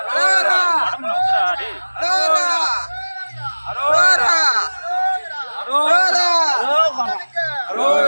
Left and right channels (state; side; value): inverted; both; correlation -1.00